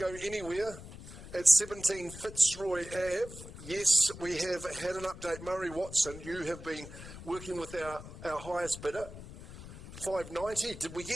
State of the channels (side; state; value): left; noise; rumble, 14 dB below the sound